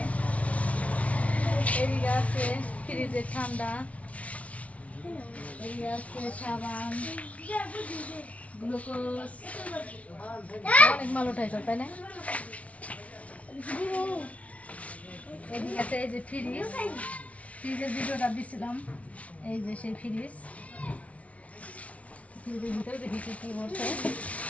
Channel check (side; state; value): right; late; 0.066 ms